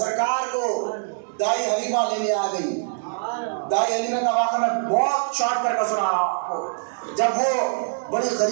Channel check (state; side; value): silent; left; 62 dB below the other